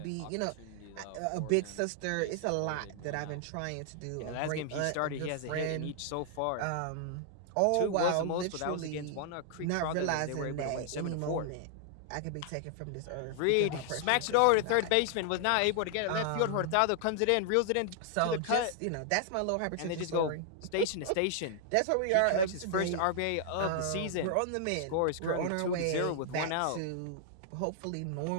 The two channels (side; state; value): both; different; correlation -0.01